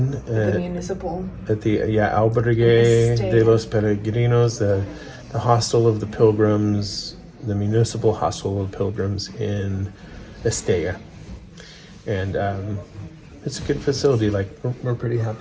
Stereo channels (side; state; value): both; identical; correlation 1.00